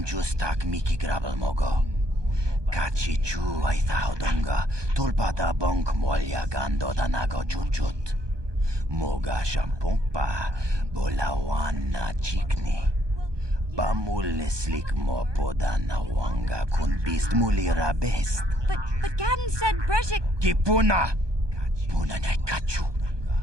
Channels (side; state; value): left; late; 1.2 ms